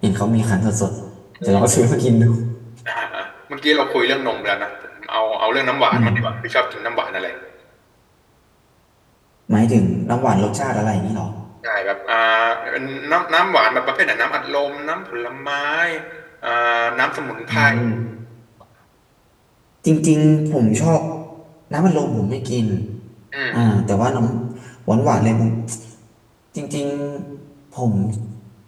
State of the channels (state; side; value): identical; both; correlation 1.00